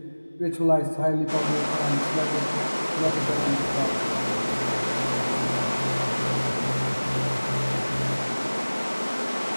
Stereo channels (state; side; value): inverted; both; correlation -1.00